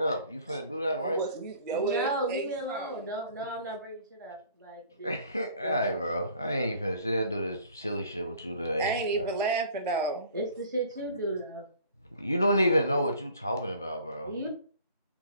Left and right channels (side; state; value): both; inverted; correlation -0.52